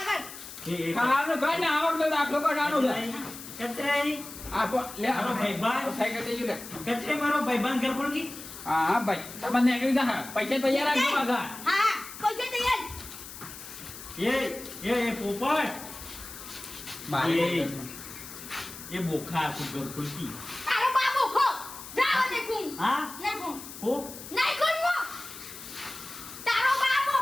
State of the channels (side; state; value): left; noise; hiss, 13 dB below the sound